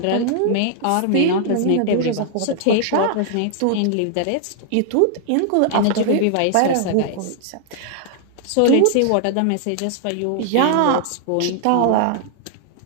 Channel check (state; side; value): different; both; correlation -0.01